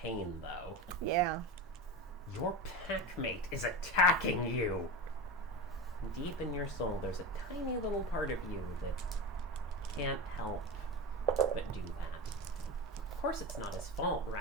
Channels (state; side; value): normal; both; correlation 0.24